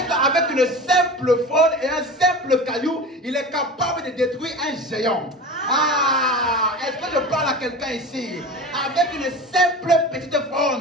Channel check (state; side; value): normal; both; correlation 0.33